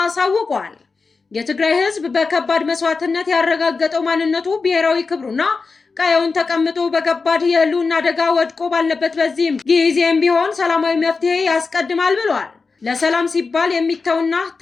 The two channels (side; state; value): right; quieter; 4.4 dB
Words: የትግራይ ህዝብ በከባድ መስዋዕትነት ያረጋገጠው ማንነቱ ብሔራዊ ክብሩና ቀየውን ተቀምጦ በከባድ የህልውና አደጋ ወድቆ ባለበት በዚህም ጊዜም ቢሆን ሰላማዊ መፍትሄ ያስቀድማል ብለዋል። ለሰላም ሲባል የሚተውና